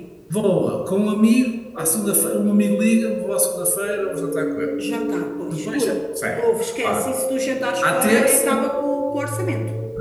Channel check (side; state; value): both; identical; correlation 1.00